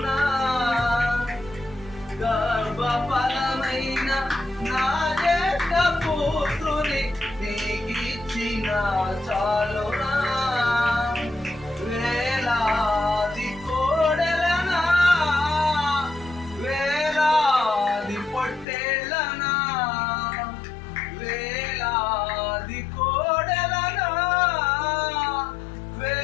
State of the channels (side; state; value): right; drops out; at 18.7 s